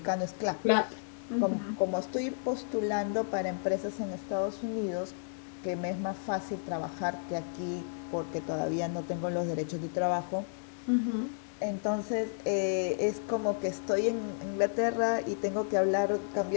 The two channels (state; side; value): silent; right; digital silence